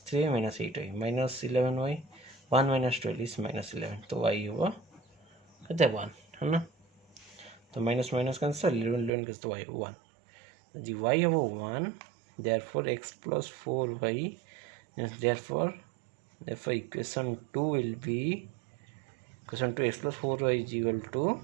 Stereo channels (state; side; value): drops out; left; at 9.1 s